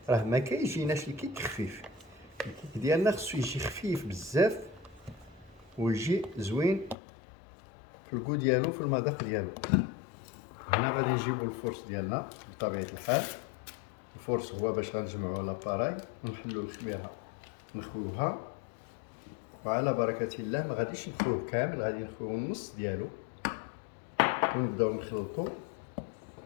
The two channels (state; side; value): drops out; right; at 7.0 s